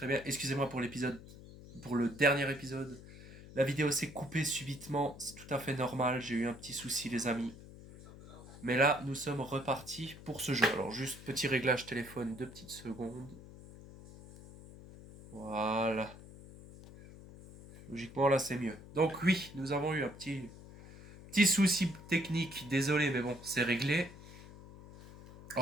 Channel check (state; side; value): noise; left; hum, 17 dB below the sound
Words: bien. Excusez-moi pour pour le dernier épisode. La vidéo s'est coupée subitement, c'est tout à fait normal. J'ai eu un petit souci, les amis. Mais là, nous sommes repartis pour ce jeu. Alors, juste petit réglage téléphone, 2 petites secondes. Voilà. Logiquement, là, c'est mieux. Donc, oui, nous avons eu un petit souci technique. Désolé, mais bon, c'est réglé.